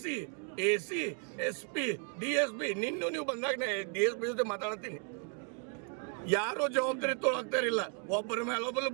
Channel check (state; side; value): quieter; left; 37.2 dB